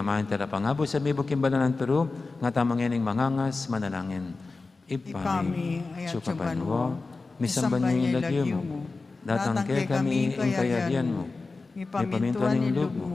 talapangabo sa mibok kimbalanan pero nga tamang yaning mangangas manalangin. Ipami, ayat sukapanwa, misamban niyo ilagyo mo, datang kay kami ing kayarian mo, ipaminto ning loob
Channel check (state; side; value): quieter; right; 3.8 dB